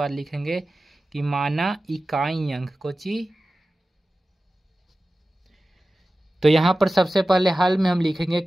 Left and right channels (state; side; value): normal; both; correlation 0.95